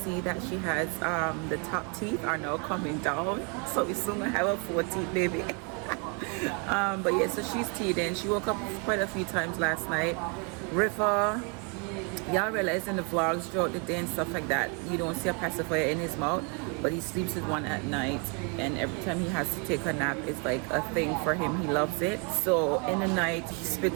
that she has the top teeth are now coming down, so we soon gonna have a 4-teeth baby. But yeah, so she's teething. She woke up quite a few times last night. River, y'all realize in the vlogs throughout the day and stuff like that, you don't see a pacifier in his mouth, but he sleeps with one at night, and every time he has to take a nap, it's like a thing for him. He loves it. So in the night he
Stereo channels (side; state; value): left; quieter; 35.4 dB